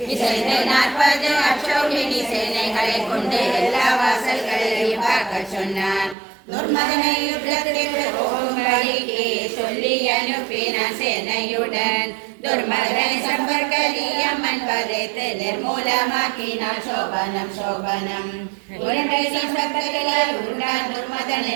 அசோகினி சேனைகளை கொண்டு எல்லா வாசல்களையும் பார்க்க சொன்னான் துர்மதனை யுத்தத்திற்கு போகும்படிக்கு சொல்லி அனுப்பினான் சேனையுடன் துர்மதனை சம்பர்கலியம்மன் வரைத்து நிர்மூலமாக்கினான் சோபனம் சோபனம் உருண்டை சம்பர்கலால் உருண்டான் துர்மதன்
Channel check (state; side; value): drops out; left; at 6.2 s